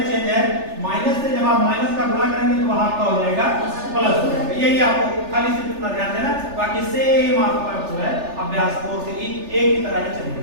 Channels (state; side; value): late; left; 3.4 ms